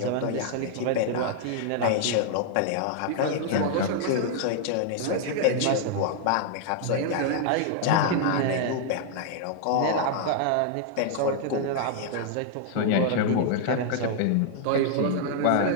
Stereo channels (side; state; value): both; different; correlation -0.01